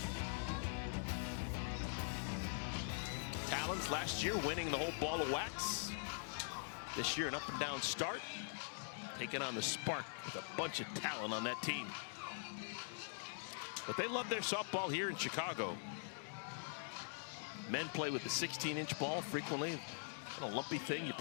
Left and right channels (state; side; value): silent; right; digital silence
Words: Talons last year winning the whole ball of wax. This year an up and down start. Taking on the Spark with a bunch of talent on that team. But they love their softball here in Chicago. Men play with the 16-inch ball frequently. Kind of lumpy thing, you